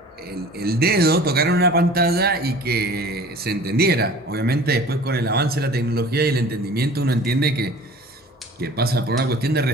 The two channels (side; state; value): both; normal; correlation 0.44